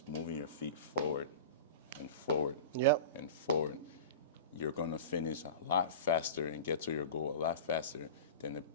moving your feet forward and forward and forward, you're going to finish a lot faster and get to your goal a lot faster than the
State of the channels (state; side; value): inverted; both; correlation -0.31